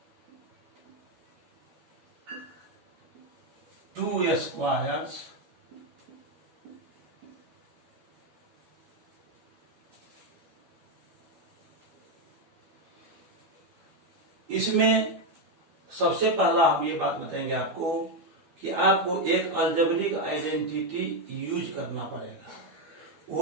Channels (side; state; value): left; late; 12 ms